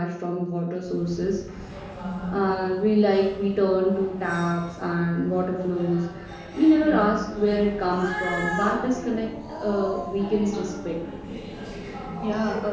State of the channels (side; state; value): both; identical; correlation 1.00